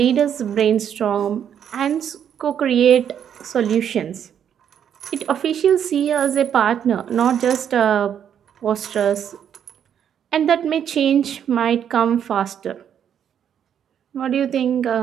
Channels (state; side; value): quieter; left; 8.9 dB